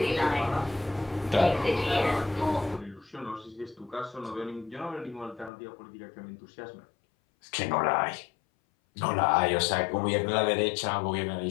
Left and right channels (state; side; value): drops out; right; at 5.5 s